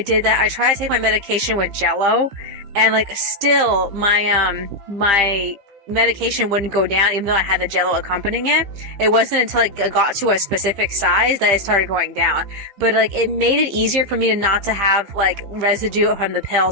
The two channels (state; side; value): late; left; 15 ms